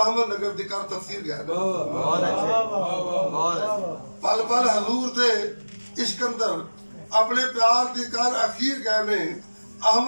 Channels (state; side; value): inverted; both; correlation -1.00